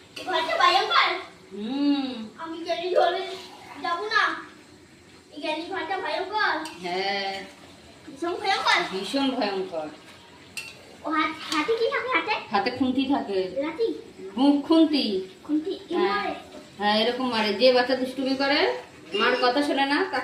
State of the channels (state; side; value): identical; both; correlation 1.00